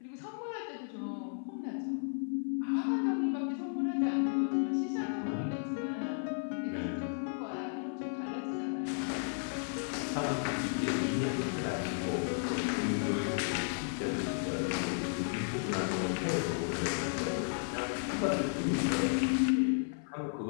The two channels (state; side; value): silent; right; 55 dB below the other